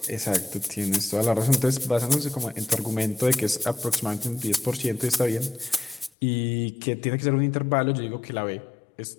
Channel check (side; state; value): right; drops out; at 6.1 s